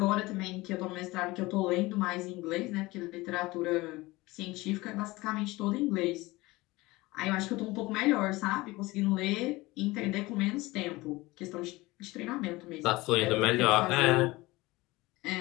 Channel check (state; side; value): quieter; right; 20.9 dB